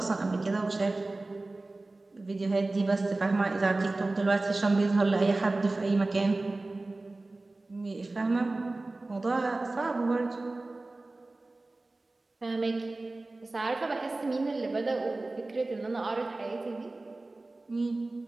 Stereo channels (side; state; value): left; quieter; 3.1 dB